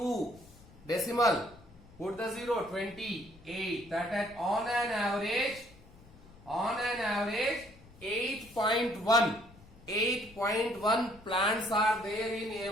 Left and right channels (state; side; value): noise; left; rumble, 23 dB below the sound